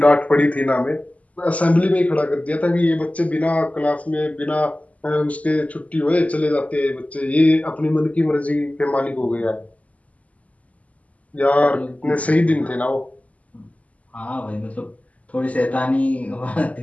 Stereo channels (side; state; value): right; late; 0.070 ms